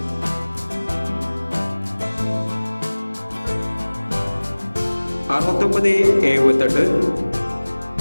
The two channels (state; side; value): inverted; both; correlation -1.00